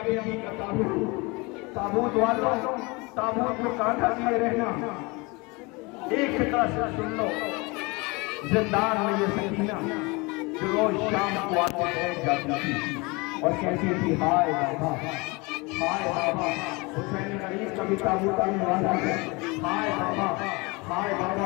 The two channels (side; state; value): right; quieter; 26.6 dB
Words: بیوی کا تابوت، تابوت والوں تابوت کو کانٹا دیے رہنا، ایک فکرہ سے سن لو، زندان میں یہ سکینہ جو روز شام کو آتے بیٹھ جاتی تھی اور کہتی تھی ہائے بابا، ہائے بابا، حسین غریب کا بھی تابوت آنے والا ہے، ہائے بابا، ہائے